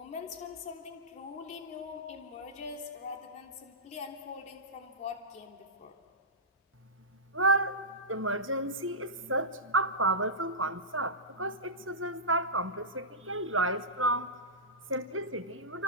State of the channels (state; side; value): normal; both; correlation -0.16